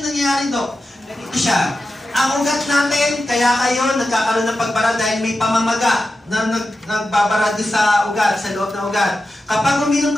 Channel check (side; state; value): both; normal; correlation 0.91